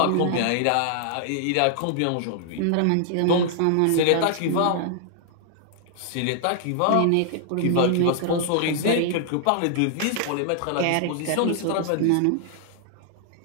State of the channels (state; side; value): different; both; correlation -0.01